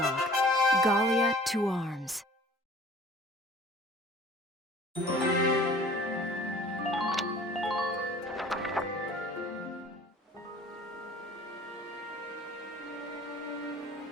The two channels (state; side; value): normal; both; correlation 0.48